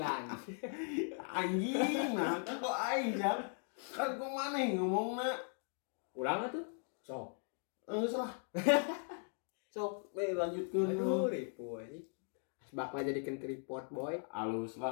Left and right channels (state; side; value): silent; right; 52 dB below the other